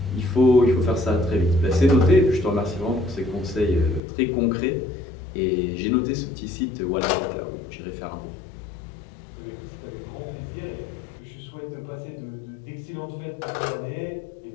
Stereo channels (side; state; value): right; drops out; at 4.0 s